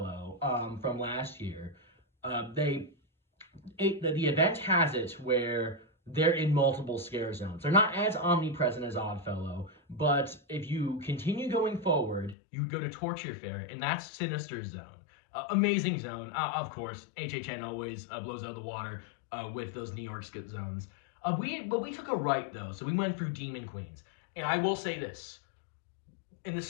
from last year, the event has it where they're in multiple scare zones. They're not as omnipresent as Oddfellow, but if you continue going forward, you go to Torture Fair, and that's Sinister Zone. Amazing zone. Of course, HHN always blows out of the water with those New York zones. But we took a right, though, so we went through Demon Queens. And I will say this, in the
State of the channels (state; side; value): drops out; right; at 12.4 s